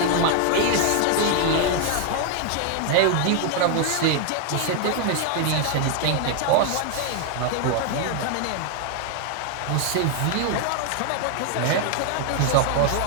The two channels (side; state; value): both; different; correlation 0.00